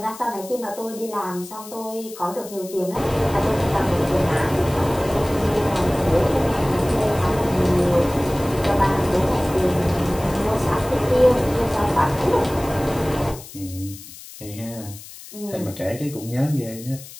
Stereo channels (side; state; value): left; noise; hiss, 16 dB below the sound